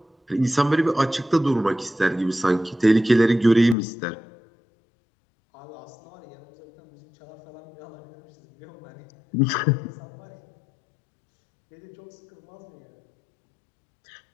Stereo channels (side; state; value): right; drops out; at 3.8 s